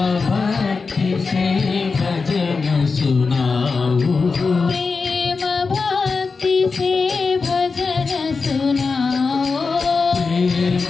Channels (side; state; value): right; quieter; 4.5 dB